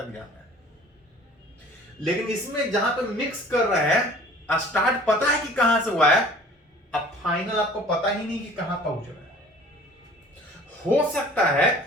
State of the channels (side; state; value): both; normal; correlation 0.49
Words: जाना है। लेकिन इसमें जहां पे मिक्स कर रहे हैं, स्टार्ट पता है कि कहां से हुआ है, अब फाइनल आपको पता ही नहीं कि कहां पहुंच रहा है। हो सकता है